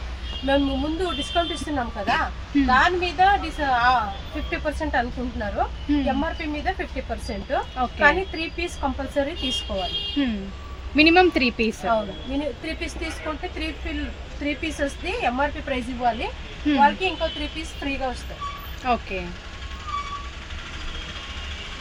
మేము ముందు డిస్కౌంట్ ఇస్తున్నాం కదా, దాని మీద 50% అనుకుంటున్నారు. ఎంఆర్పి మీద 50%. కానీ 3 పీస్ కంపల్సరీ తీసుకోవాలి. Minimum 3 piece. అవును, 3 పీస్ తీసుకుంటే 3 పీసెస్ ది ఎంఆర్పి ప్రైస్ ఇవ్వాలి. వాళ్ళకి ఇంకో 3 పీస్ ఫ్రీగా వస్తాయి. ఓకే.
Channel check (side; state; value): both; identical; correlation 1.00